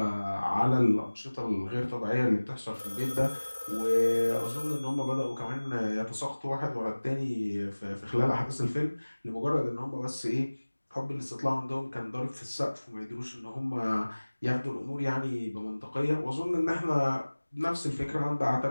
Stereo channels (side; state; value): both; inverted; correlation -1.00